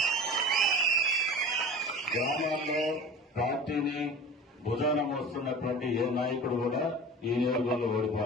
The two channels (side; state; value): both; normal; correlation 0.36